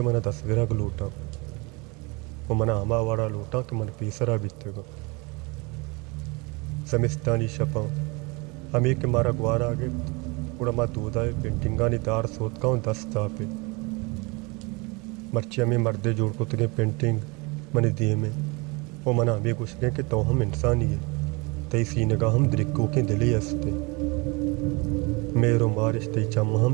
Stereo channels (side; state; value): left; quieter; 27.9 dB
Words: मन तस्वीरा गलूटा वो मना हमा वाड़ा लूटा के मन पीसरा बीतेगा समिस्तानी शपा अमी के मारा ग्वार आगे उड़ा मा दूधाए पेंटिंगानी दार सोत का दस्ता पे मर्ची अमी मर्दे जोड़ को तगे पेंटिंग मनी दिए में वो मना अमी गुस्से के तो हम इंसानी है तई सीने का हम द्रिक्को के दिली हंसते मेरो मारिश तई चम